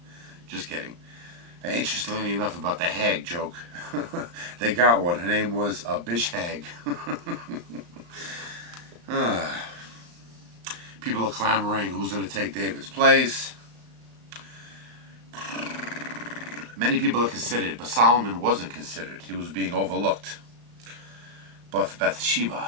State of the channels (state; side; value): late; left; 35 ms